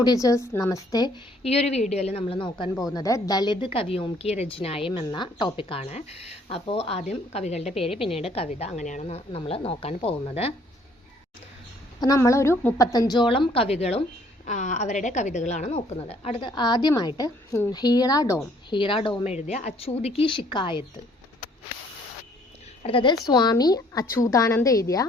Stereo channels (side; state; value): both; normal; correlation 0.62